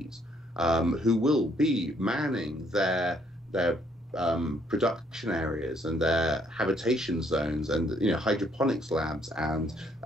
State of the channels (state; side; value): normal; both; correlation 0.67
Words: who will be manning their production areas and their habitation zones and hydroponics labs, and